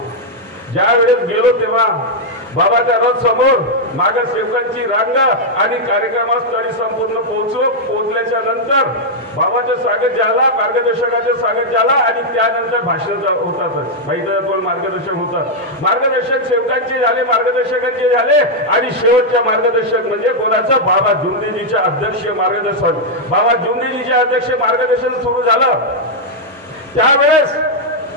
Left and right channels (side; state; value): both; normal; correlation -0.03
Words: ज्या वेळेस गेलो तेव्हा बाबाच्या रथ समोर मागे सेवकांची रांग आणि कार्यक्रमस्थळी संपूर्ण पोहोचल्याच्या नंतर बाबाचं स्वागत झाला, मार्गदर्शकाचं स्वागत झाला आणि त्यानंतर भाषण होतातच, माहिती मार्गदर्शक होतात। मार्गदर्शक सेवकांचे झाले, मार्गदर्शकांचे झाले आणि शेवटच्या मार्गदर्शक म्हणजे कोणाचं, बाबा जुमदेवजीचे अध्यक्ष मार्गदर्शन। बाबा जुमदेवजीचे अध्यक्ष मार्गदर्शन सुरू झालं त्यावेळेस